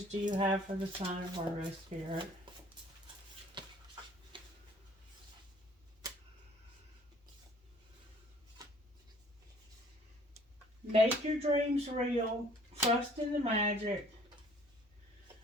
do you have for the sign of Virgo, Spirit? Make your dreams real. Trust in the magic.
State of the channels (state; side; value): normal; both; correlation 0.55